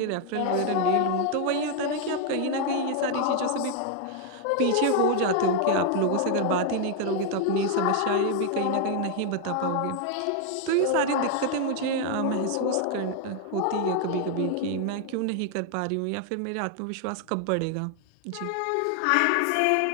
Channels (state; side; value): different; both; correlation 0.00